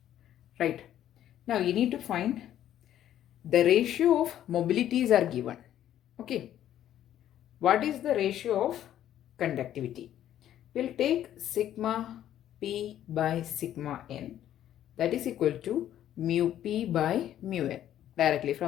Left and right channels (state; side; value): quieter; right; 11.5 dB